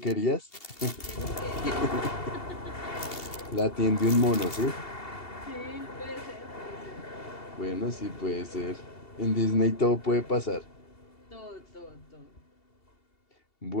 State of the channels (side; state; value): right; late; 2.7 ms